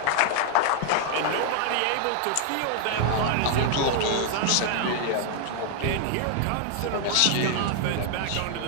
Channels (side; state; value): both; different; correlation 0.00